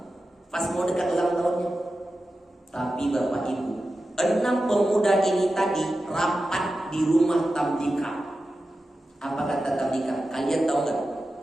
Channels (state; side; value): normal; both; correlation 0.92